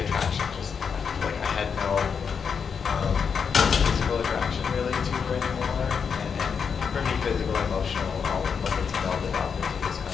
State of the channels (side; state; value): right; quieter; 6.4 dB